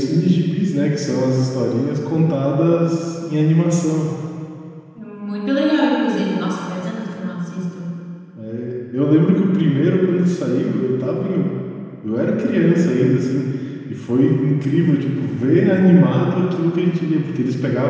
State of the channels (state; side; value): identical; both; correlation 1.00